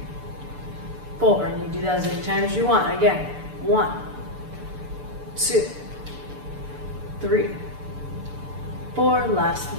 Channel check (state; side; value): late; left; 6.8 ms